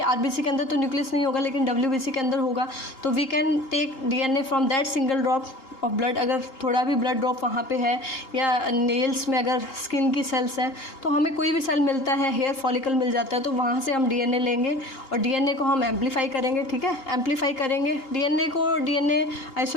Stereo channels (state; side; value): late; right; 2.8 ms